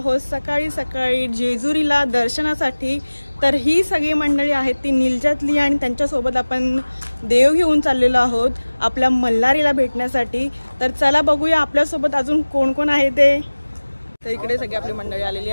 सकाळी सकाळी जेजुरीला दर्शनासाठी. तर ही सगळी मंडळी आहेत ती निलजातली आणि त्यांच्यासोबत आपण देव घेऊन चाललेलो आहोत आपल्या मल्हारीला भेटण्यासाठी. तर चला बघूया आपल्यासोबत अजून कोण कोण आहे ते. तर इकडे सगळी आपली मंडळी आलेली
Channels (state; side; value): inverted; both; correlation -1.00